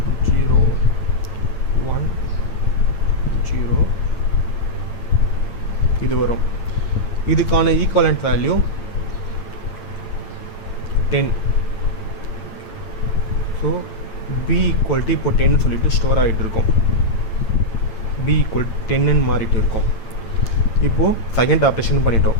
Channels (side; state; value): right; late; 8.9 ms